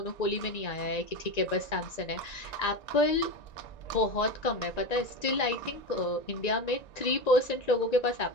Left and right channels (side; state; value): right; late; 1.9 ms